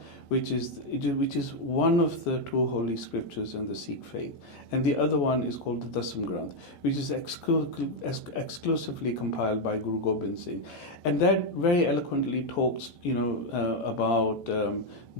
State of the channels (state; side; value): late; right; 14 ms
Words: which is one of the two holy scriptures in the Sikh faith, and the other one is called the Dasam Granth, which is exclusively compiled by Guru Gobind Singh, and that very eloquently talks, you know, about